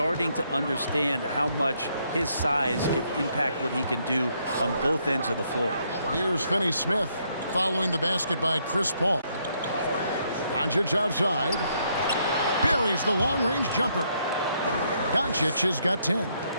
to understand how much his size can impact what he can do on both ends of the floor. Here's Finney-Smith following the basket by Chris Paul. Doncic outside. Buries the long-range jumper. Doncic has got 10.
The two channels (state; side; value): inverted; both; correlation -0.73